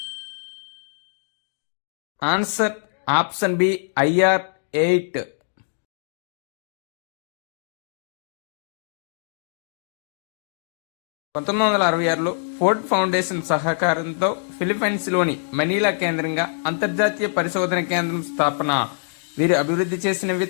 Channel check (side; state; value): right; silent; digital silence